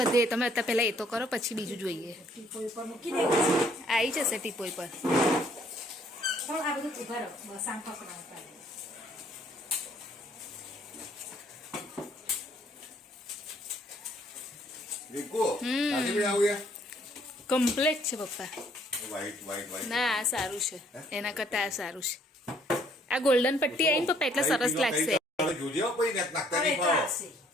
તમે અત્યારે પહેલાં એ તો કરો પછી બીજું જોઈએ. ટીપોઈ પર મૂકી દેવું. આવી જશે ટીપોઈ પર. પણ આ બધું ઉભા રહો બસ આમ પકડાવતા. કમ્પ્લેટ છે પપ્પા. વ્હાઈટ ના આ સારું છે, એના કરતાં આ સારું છે. આ ગોલ્ડન પટ્ટી આવી ને પપ્પા એટલે સરસ લાગશે. જોજો પછી નાખતા નહીં ખાઓ.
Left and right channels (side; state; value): both; normal; correlation 0.64